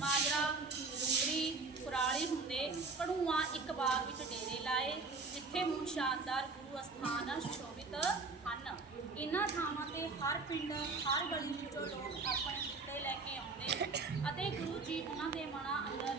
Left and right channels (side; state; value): left; quieter; 4.0 dB